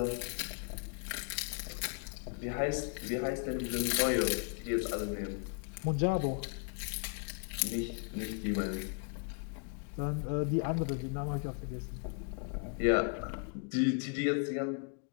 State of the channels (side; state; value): right; quieter; 39.7 dB